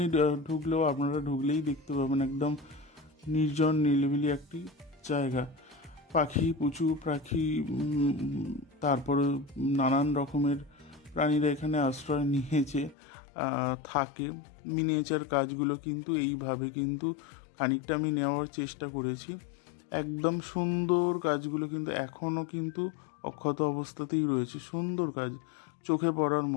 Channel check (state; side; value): drops out; right; at 13.0 s